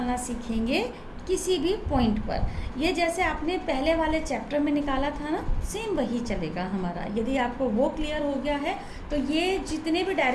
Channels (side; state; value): both; identical; correlation 1.00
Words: सीखेंगे किसी भी पॉइंट पर। ये जैसे आपने पहले वाले चैप्टर में निकाला था ना, सेम वही चलेगा हमारा। यदि आपको वो क्लियर हो गया है तो ये जितने भी